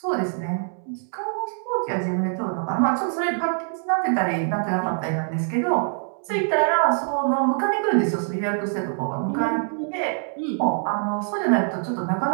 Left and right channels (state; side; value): silent; left; 62 dB below the other